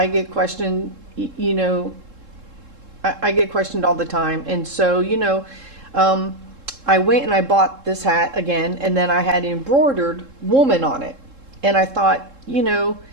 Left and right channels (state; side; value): late; left; 3.7 ms